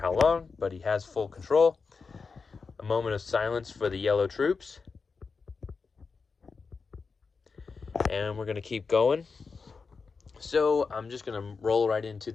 long, but he has full control. A moment of silence for the yellow troops. And we're going to keep going. So I'm just going to roll right into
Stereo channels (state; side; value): quieter; right; 4.8 dB